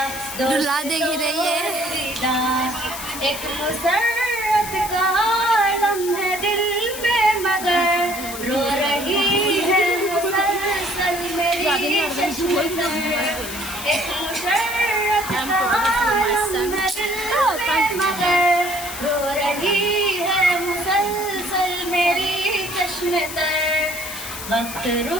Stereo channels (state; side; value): noise; left; hiss, 9 dB below the sound